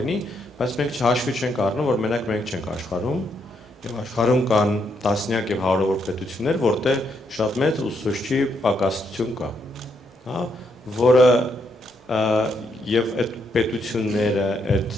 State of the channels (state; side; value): normal; both; correlation 0.77